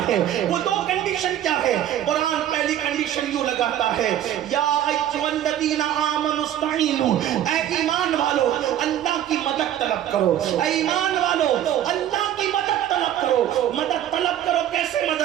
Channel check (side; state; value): left; quieter; 11.4 dB